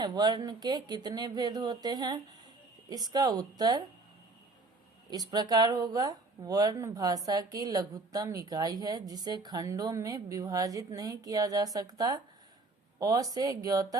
वर्ण के कितने भेद होते हैं? इसका उत्तर इस प्रकार होगा। वर्ण भाषा की लघुत्तम इकाई है जिसे खंडों में विभाजित नहीं किया जा सकता। अ से ज्ञ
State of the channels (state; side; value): quieter; left; 3.3 dB